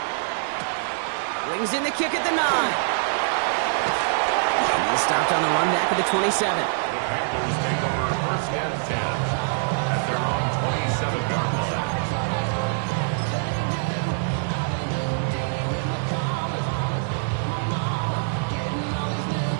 Brings in the kick at the 9. And he's stopped on the run back at the 27. The Panthers take over 1st and 10 at their own 27-yard line.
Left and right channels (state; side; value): silent; left; digital silence